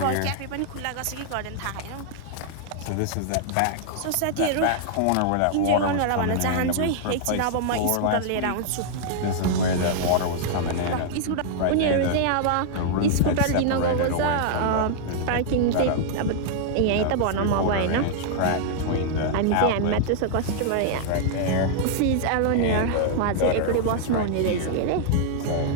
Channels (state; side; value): different; both; correlation -0.01